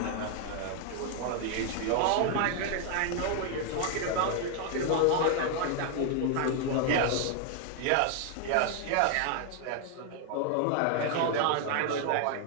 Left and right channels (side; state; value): both; different; correlation 0.00